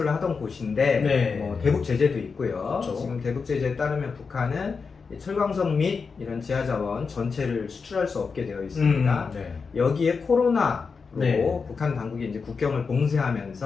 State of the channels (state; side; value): quieter; right; 5.1 dB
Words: 하던 곳인데 네. 뭐 대북 제재도 있고요. 그렇죠. 지금 대북 제재에 따르면 북한은 이 철광석 및 이런 지하자원 전체를 수출할 수 없게 되어 있습니다. 네. 여기에 코로나로 네. 북한 당국이 이제 국경을